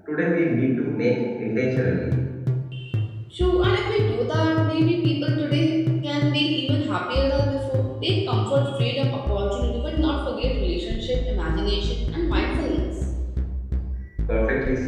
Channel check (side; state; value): both; identical; correlation 1.00